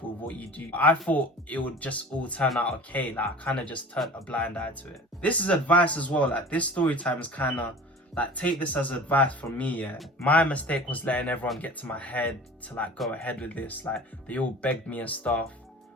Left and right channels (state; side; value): normal; both; correlation 0.40